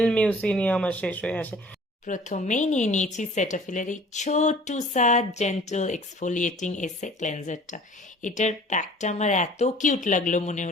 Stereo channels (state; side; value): normal; both; correlation 0.49